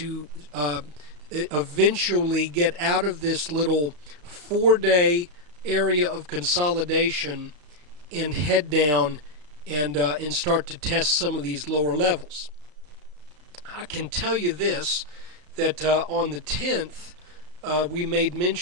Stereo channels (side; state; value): left; late; 34 ms